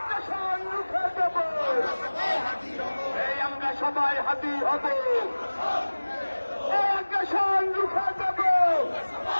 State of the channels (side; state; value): both; inverted; correlation -1.00